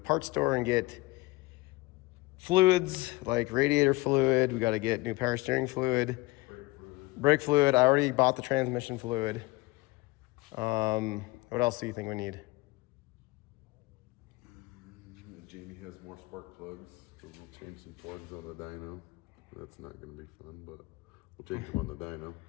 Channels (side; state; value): right; quieter; 22.3 dB